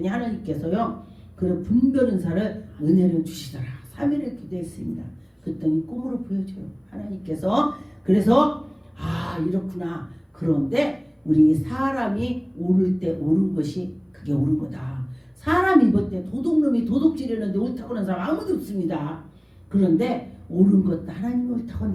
하나님께서요 그런 분별 은사를 은혜를 주시더라. 3일을 기도했습니다. 그랬더니 꿈으로 보여줘요. 하나님께서. 그래서 이렇구나. 그런데 우리 사람이 오를 때 옳은 것이 그게 옳은 거다. 사람이 볼 때 도둑놈이 도둑질하는데 옳다고 하는 사람 아무도 없습니다. 그런데 옳은 것도 하나님이 옳다고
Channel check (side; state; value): both; identical; correlation 1.00